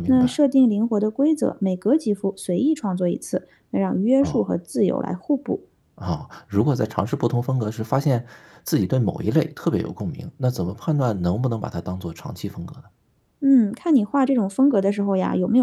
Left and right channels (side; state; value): both; identical; correlation 1.00